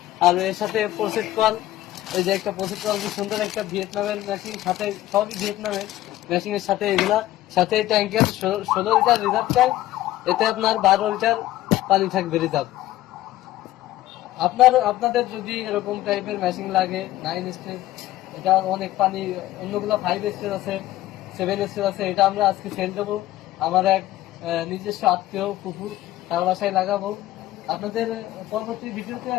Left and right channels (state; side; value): quieter; right; 15.0 dB